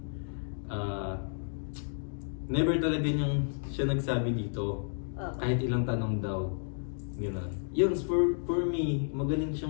Never talaga niyang siya nagsabi dito, kahit ilang tanong daw. Gano'n. Yun, for me, magaling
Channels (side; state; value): right; silent; digital silence